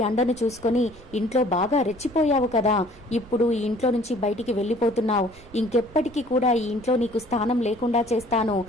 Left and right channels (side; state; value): right; noise; rumble, 22 dB below the sound